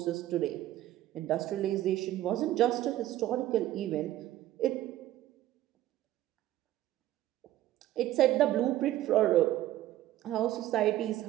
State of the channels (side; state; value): left; quieter; 14.1 dB